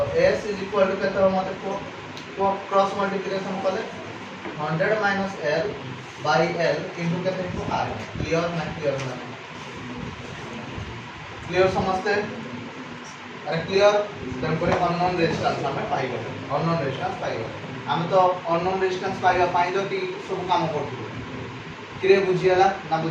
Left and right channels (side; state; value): both; identical; correlation 1.00